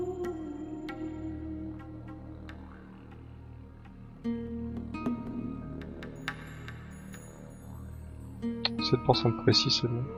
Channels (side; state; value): both; identical; correlation 1.00